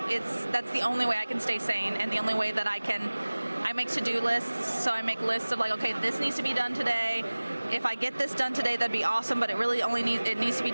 the only way I can stay sane, and the only way that I make to-do lists. So I make lists of like, okay, this needs to be done today. If I get this done today, that'd be awesome, but it really only needs to be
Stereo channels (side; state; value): both; inverted; correlation -1.00